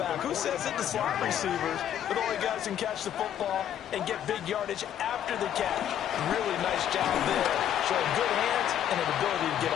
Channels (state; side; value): quieter; right; 10.4 dB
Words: Who says it? The slot receivers are the only guys who can catch the football and get big yardage after the catch. Really nice job there. Showing good hands and an ability to get